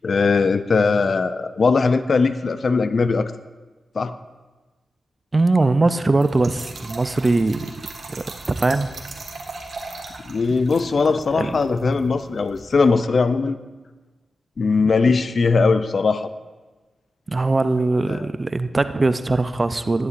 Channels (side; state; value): both; normal; correlation 0.92